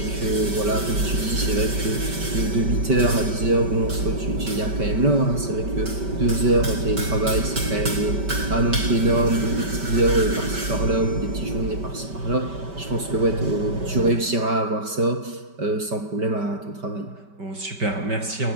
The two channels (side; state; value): left; late; 5.2 ms